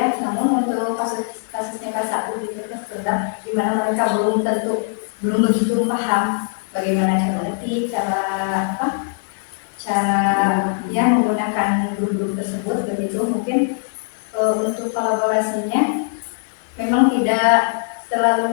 Namun untuk kasusnya K1 gitu sudah di mana mereka belum begitu paham bagaimana cara ngetik, cara ya menggunakan guru-guru tersebut begitu. Mungkin untuk kolaborasinya memang tidak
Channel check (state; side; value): silent; right; 65 dB below the other